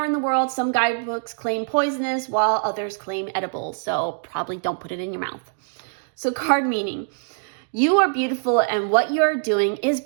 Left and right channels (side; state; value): left; silent; 63 dB below the other